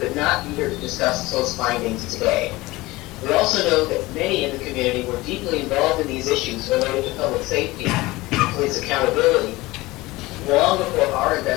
could not be here to discuss those findings today. We also know that many in the community were deeply involved in these issues related to public safety and police accountability long before our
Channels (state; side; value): quieter; right; 20.2 dB